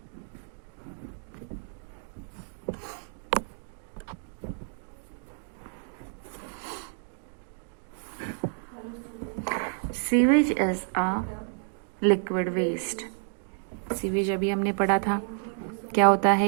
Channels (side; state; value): left; silent; digital silence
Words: Sewage is a liquid waste. Sewage अभी हमने पढ़ा था क्या होता